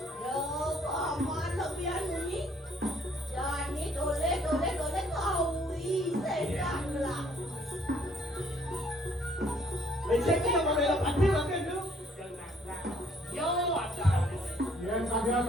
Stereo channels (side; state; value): both; normal; correlation 0.64